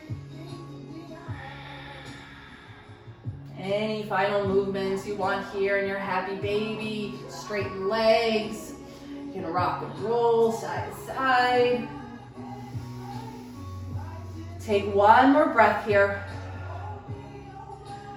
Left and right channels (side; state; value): both; identical; correlation 1.00